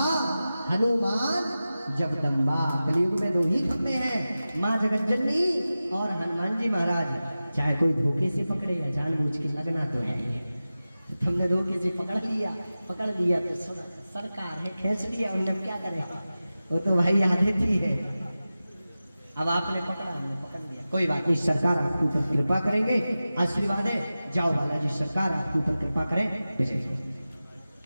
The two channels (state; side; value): inverted; both; correlation -0.95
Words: हनुमान जगदम्बा। कलयुग में 2 ही खंभे हैं, माँ जगतजननी और हनुमान जी महाराज। चाहे कोई धोखे से पकड़े या जानबूझ के लगना तो है ही। तुमने धोखे से पकड़ लिया तो सरकार है, खींच लिया, उन्हें अब क्या करेगा? वो तो भाई आदत ही है। अब आपने पकड़ा, हमने पकड़ लिया, कोई बात नहीं, सरकार आपके ऊपर कृपा करेंगे। आशीर्वाद है, जाओ बालाजी सरकार आपके ऊपर कृपा करें।